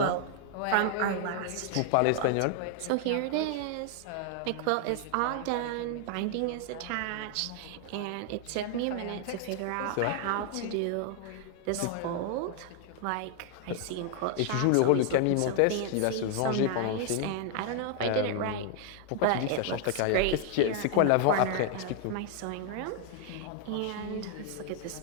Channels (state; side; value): different; both; correlation 0.00